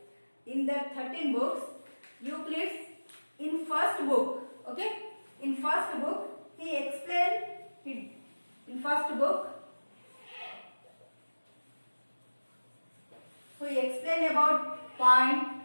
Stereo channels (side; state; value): both; inverted; correlation -1.00